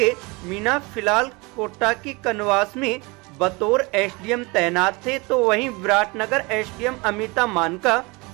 मीणा फिलहाल कोटा की कनवास में बतौर एसडीएम तैनात थे, तो वहीं विराटनगर एसडीएम अमिता मान का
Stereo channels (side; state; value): left; quieter; 26.2 dB